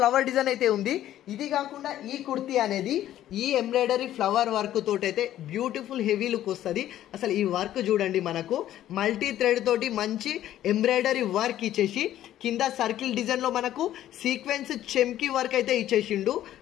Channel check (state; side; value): quieter; right; 12.6 dB